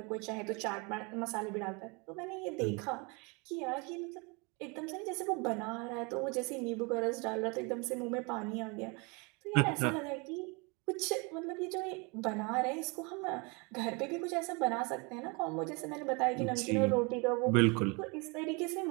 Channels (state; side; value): quieter; left; 29.9 dB